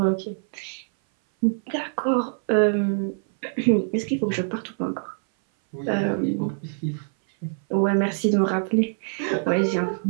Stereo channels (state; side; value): silent; left; 59 dB below the other